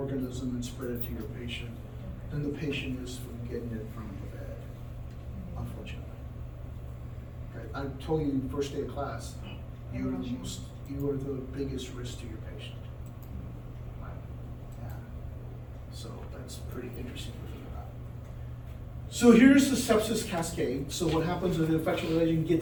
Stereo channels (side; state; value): both; identical; correlation 1.00